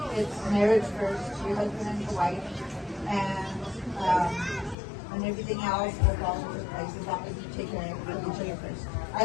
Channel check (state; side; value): drops out; right; at 4.8 s